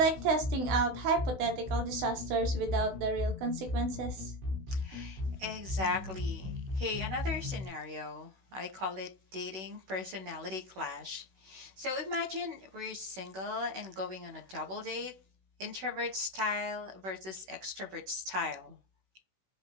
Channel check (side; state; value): left; late; 16 ms